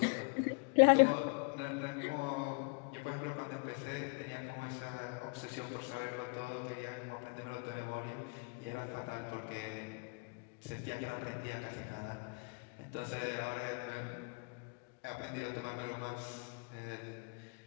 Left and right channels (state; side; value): quieter; right; 33.2 dB